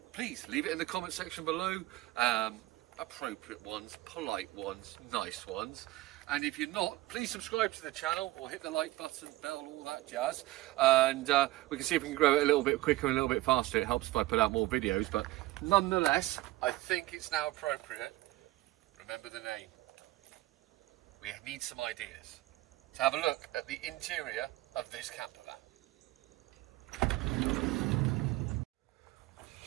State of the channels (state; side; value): quieter; left; 18.1 dB